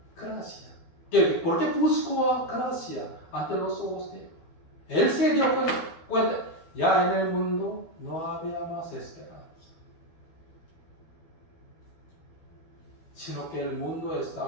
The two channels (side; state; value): right; late; 12 ms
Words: gracia? ¿Por qué buscó gracia ante los ojos de Dios? Él se dio cuenta, ya en el mundo no había más esperanza, sino que el mundo